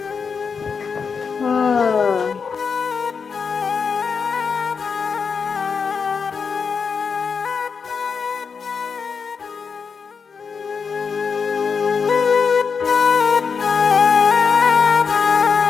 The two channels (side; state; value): right; quieter; 5.8 dB